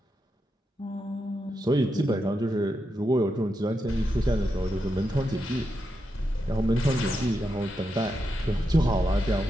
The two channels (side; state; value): both; normal; correlation 0.85